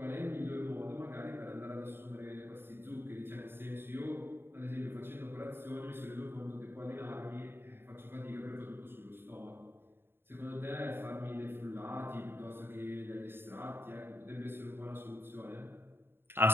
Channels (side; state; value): left; late; 0.11 ms